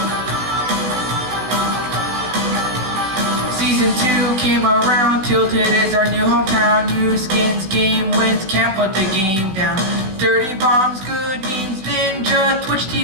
Season 2 came around, Tilted is our new hometown. New skins, game wins, can't put the game down. Dirty bombs, good means, Ninja, Twitch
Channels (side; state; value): left; late; 16 ms